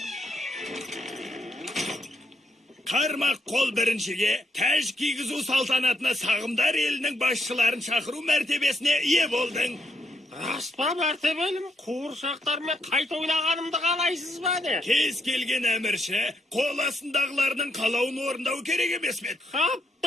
Қармақ қол біріншіге тәж кигізу салтанатына сағымдар елінің басшыларын шақыру мәртебесіне ие болдың. Рас па мәртебелім, қуыршақтармен қайта ойнағанымды қалайсыз ба не? Кез келген әмірші қол астындағылардың қалауын орындау керек емес пе? Қап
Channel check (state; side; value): normal; both; correlation 0.76